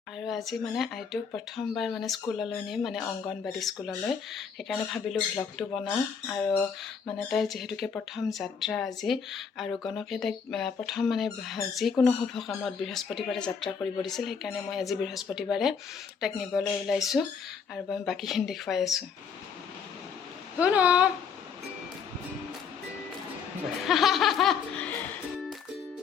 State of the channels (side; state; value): right; quieter; 6.4 dB